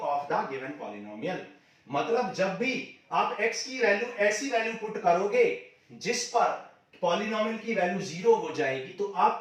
of the given polynomial। मतलब जब भी आप x की वैल्यू ऐसी वैल्यू पुट करोगे जिस पर पॉलिनोमियल की वैल्यू 0 हो जाएगी, तो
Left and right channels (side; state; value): both; identical; correlation 1.00